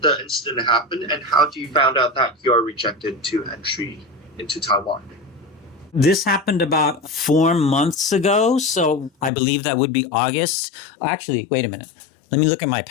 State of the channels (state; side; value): drops out; right; at 9.3 s